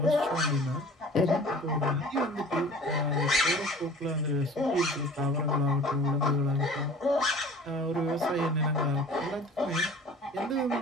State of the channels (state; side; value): normal; both; correlation 0.45